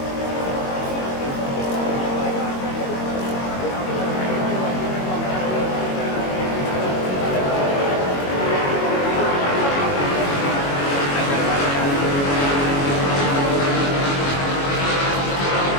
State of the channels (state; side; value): late; right; 22 ms